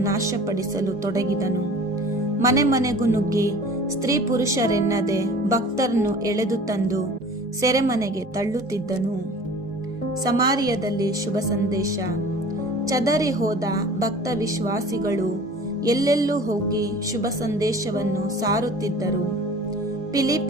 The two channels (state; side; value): normal; both; correlation 0.44